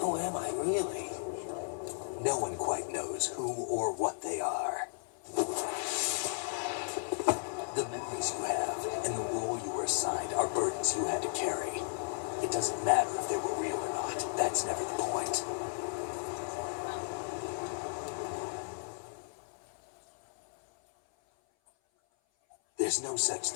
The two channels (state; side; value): silent; right; 55 dB below the other